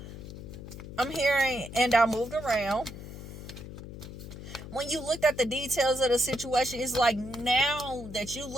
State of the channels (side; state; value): left; noise; hum, 12 dB below the sound